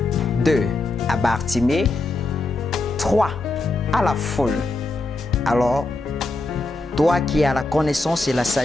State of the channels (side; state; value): right; quieter; 3.0 dB